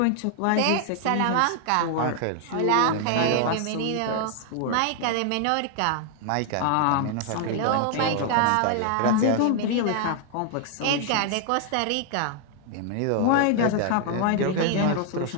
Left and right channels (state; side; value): different; both; correlation 0.00